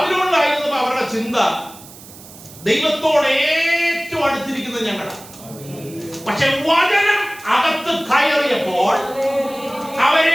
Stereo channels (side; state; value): right; noise; hiss, 19 dB below the sound